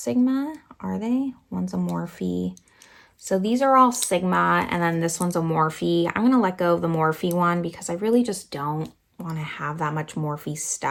are they? One's a Morphe. So these are all Sigma, and then this one's a Morphe. I'm going to let go of the Morphe one because I really just don't want to have that much Morphe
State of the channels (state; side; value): identical; both; correlation 1.00